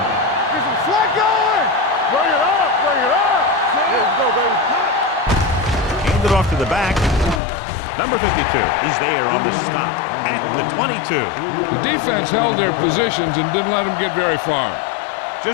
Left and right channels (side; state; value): right; drops out; at 7.4 s